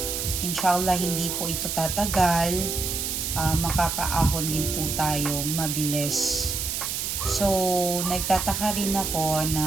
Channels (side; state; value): right; noise; hiss, 2 dB below the sound